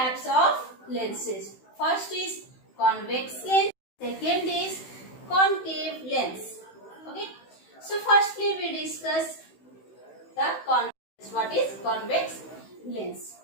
of lenses. First is convex lens. Second is concave lens. Okay. So firstly we discuss the convex. What is convex lens?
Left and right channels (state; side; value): late; right; 16 ms